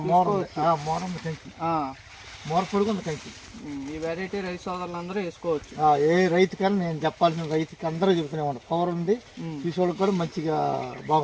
మోర పొడుగు ఉంది కంకి. ఈ వెరైటీ రైతు సోదరులందరూ వేసుకోవచ్చు. ఏ రైతుకైనా నేను చెప్పాల్సిన రైతుకి అందరూ చెబుతూనే ఉంటాను. పవర్ ఉంది, చూసేవాళ్ళకి కూడా మంచిగా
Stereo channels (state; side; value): identical; both; correlation 1.00